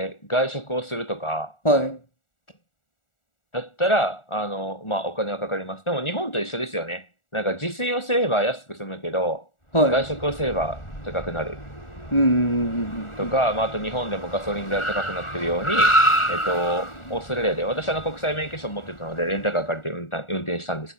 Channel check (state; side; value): late; right; 1.4 ms